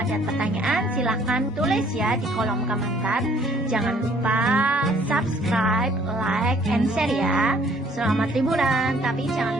pertanyaan silahkan tulis ya di kolom komentar. Jangan lupa subscribe, like, and share ya. Selamat liburan, tapi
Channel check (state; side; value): normal; both; correlation 0.60